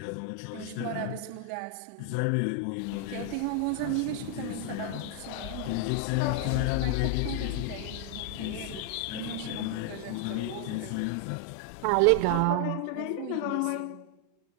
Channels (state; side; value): different; both; correlation 0.00